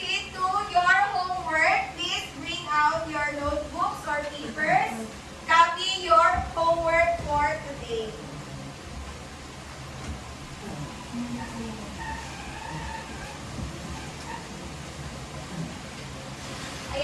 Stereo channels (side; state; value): both; identical; correlation 1.00